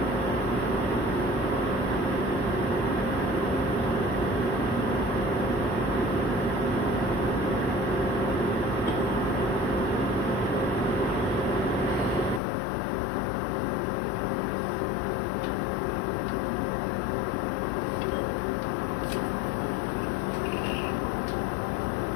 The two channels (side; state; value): right; drops out; at 12.4 s